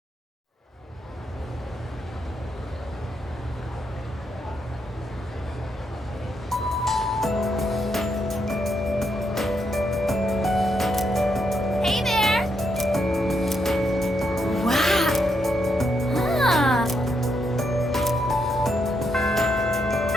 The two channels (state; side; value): normal; both; correlation 0.79